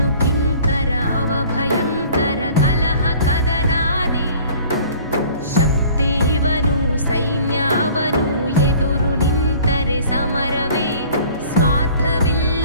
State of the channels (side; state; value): both; inverted; correlation -0.50